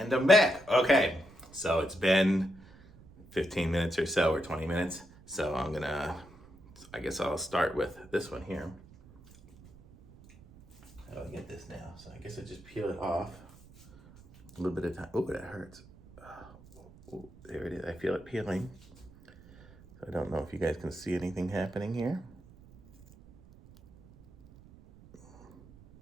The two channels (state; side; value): noise; right; rumble, 23 dB below the sound